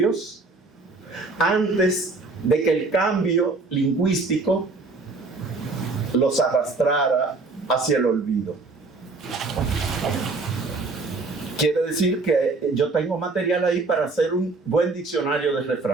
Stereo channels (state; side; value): quieter; left; 3.6 dB